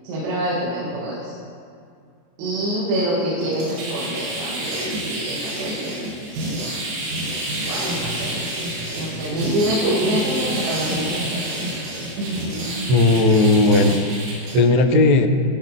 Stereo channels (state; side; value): late; left; 24 ms